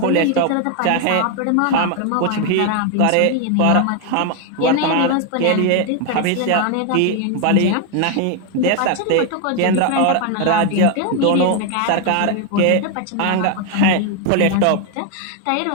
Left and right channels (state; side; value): different; both; correlation 0.01